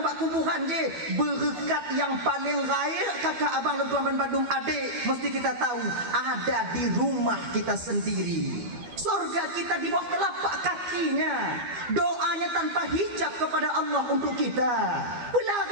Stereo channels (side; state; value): left; late; 12 ms